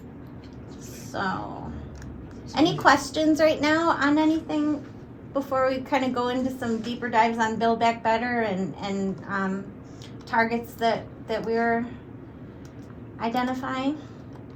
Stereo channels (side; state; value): both; identical; correlation 1.00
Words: So, any questions right now on anything before we kind of go into some deeper dives on Build Back Better and targets that we're identifying?